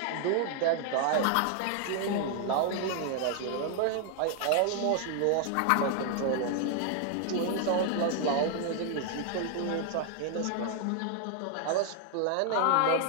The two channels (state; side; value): different; both; correlation 0.00